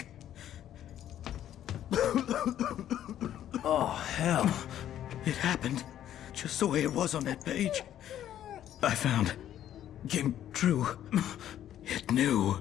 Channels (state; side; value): quieter; right; 11.3 dB